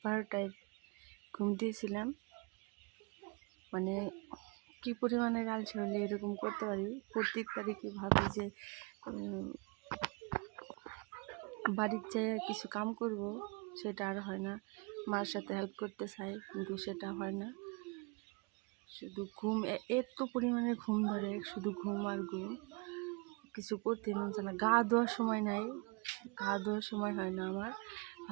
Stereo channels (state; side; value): quieter; left; 30.4 dB